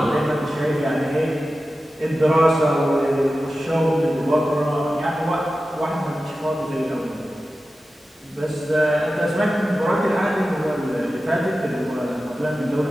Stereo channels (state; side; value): normal; both; correlation 0.94